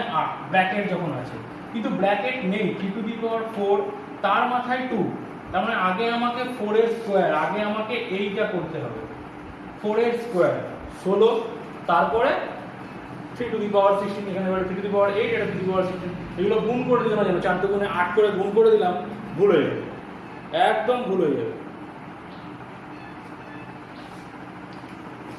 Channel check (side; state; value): both; identical; correlation 1.00